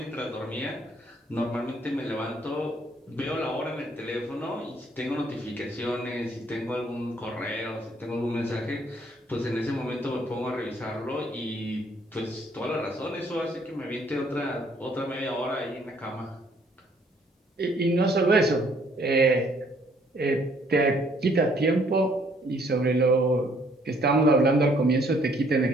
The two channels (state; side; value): normal; both; correlation 0.64